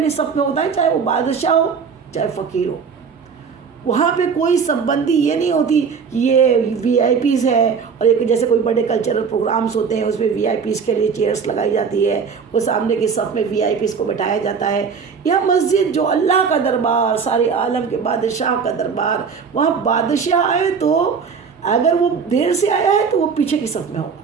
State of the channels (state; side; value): quieter; left; 6.0 dB